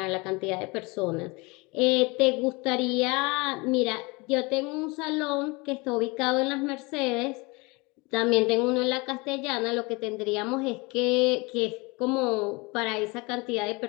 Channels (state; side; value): quieter; right; 26.3 dB